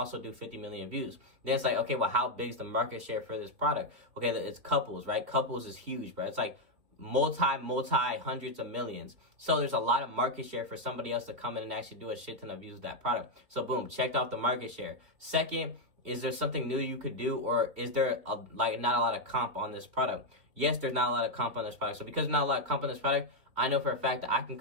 do 50 million views. Then it's like, okay, well, how big is the market share for this product? Okay, it's couples, right? Couples is huge, bro. It's like multi hundreds of millions. So there's a lot of market share for somebody else to come in and actually do a shit ton of views with that product. So boom, checked off the market share. Second, is there something new you could do, or is there not a lot of comp on this product? Yes, there's not a lot of comp on this product. So because there's not a lot of comp on this product, I know for a fact that I can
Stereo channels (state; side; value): late; left; 3.3 ms